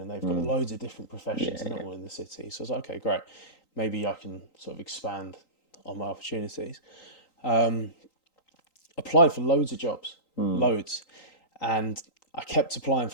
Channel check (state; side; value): late; right; 3.9 ms